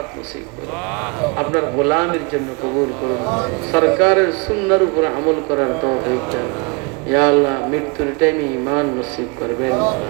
নসিব করুন, আপনার গোলামের জন্য কবুল করুন, সরকারের সুন্নাহর উপর আমল করার তৌফিক দেন। ইয়া আল্লাহ মৃত্যুর টাইমে ঈমান নসিব করবেন,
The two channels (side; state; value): left; quieter; 29.8 dB